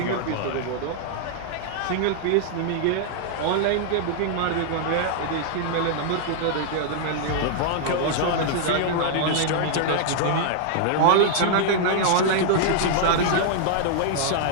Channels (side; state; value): both; different; correlation -0.01